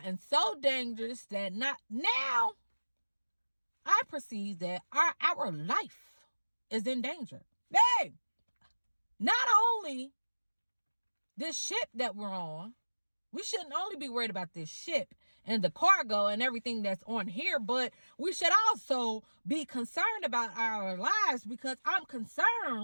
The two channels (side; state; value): both; inverted; correlation -1.00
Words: so dangerous that now I perceive that our life is in danger. Hey, not only this ship that we're on, we shouldn't only be worried about this ship and the cargo and everything that's on here, but we should also be concerned about our lives, because I'm